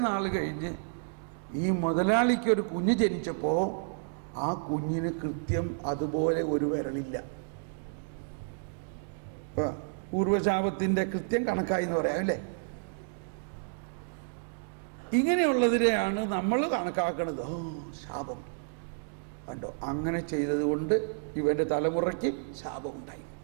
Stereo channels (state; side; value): silent; left; digital silence